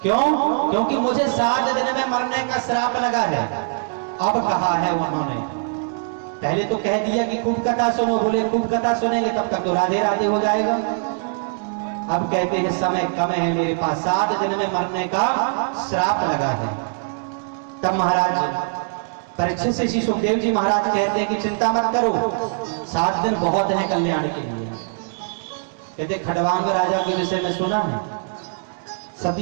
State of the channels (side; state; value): left; silent; digital silence